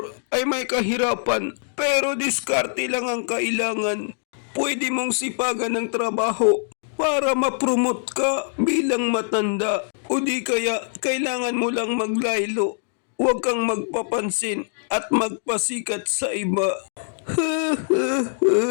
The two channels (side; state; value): right; silent; digital silence